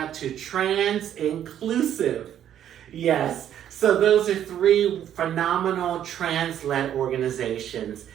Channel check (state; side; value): quieter; left; 10.4 dB